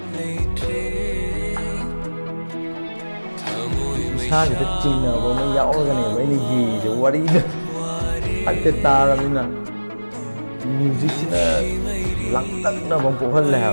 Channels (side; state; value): both; inverted; correlation -1.00